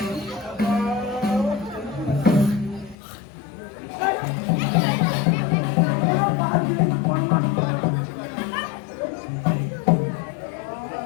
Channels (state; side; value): drops out; right; at 3.0 s